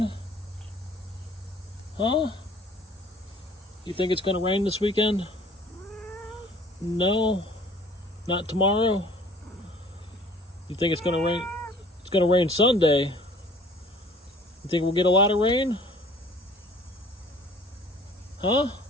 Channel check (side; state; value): both; normal; correlation 0.52